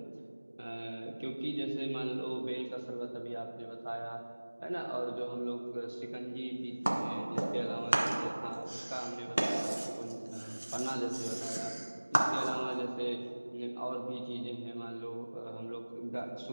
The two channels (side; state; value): both; inverted; correlation -1.00